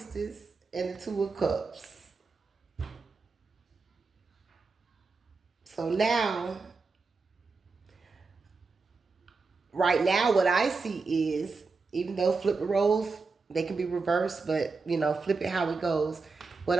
and the Two of Cups. So now, right now, what I see is, even though flip the roles, they can be reversed, but, you know, flip it how it goes. What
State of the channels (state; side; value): quieter; left; 4.3 dB